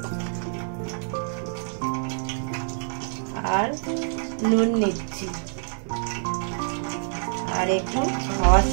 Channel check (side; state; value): left; silent; digital silence